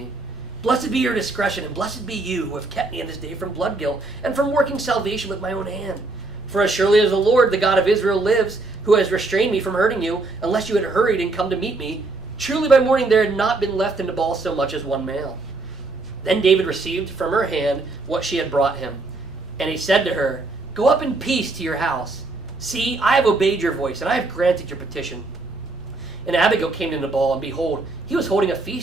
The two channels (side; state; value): left; quieter; 3.3 dB